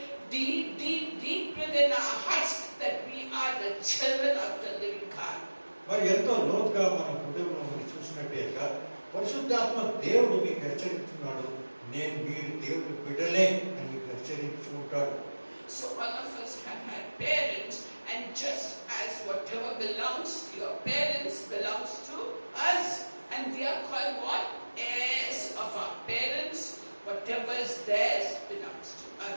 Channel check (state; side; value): inverted; both; correlation -1.00